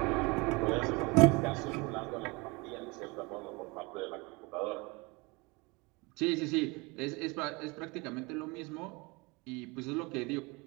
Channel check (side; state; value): left; quieter; 26.5 dB